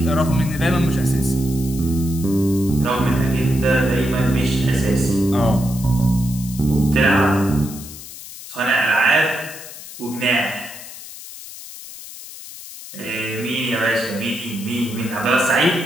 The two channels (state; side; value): noise; left; hiss, 14 dB below the sound